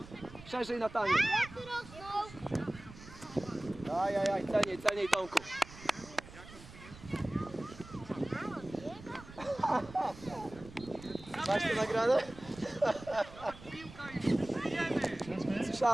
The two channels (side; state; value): right; noise; rumble, 17 dB below the sound